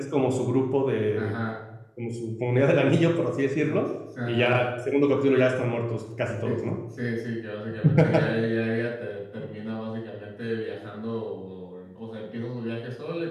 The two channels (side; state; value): both; identical; correlation 1.00